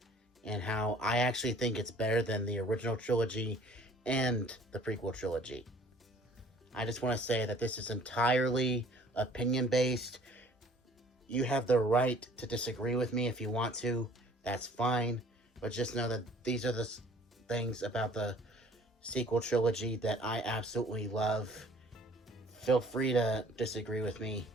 and how I actually think it's better than the original trilogy and the prequel trilogy. I just want to say that this is entirely opinion-based. You have the right to disagree with me if you want to. That's fine. But just know that these are the things about the sequel trilogy that I absolutely love. Feel free to disagree with me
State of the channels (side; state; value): both; normal; correlation 0.54